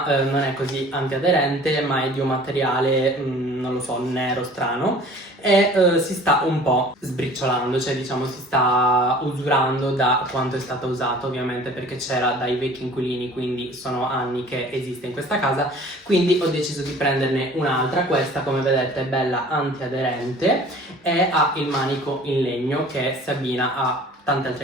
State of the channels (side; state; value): both; normal; correlation 0.47